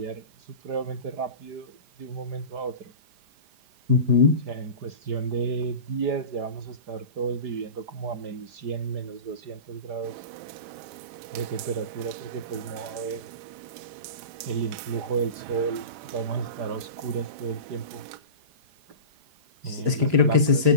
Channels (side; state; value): left; late; 5.0 ms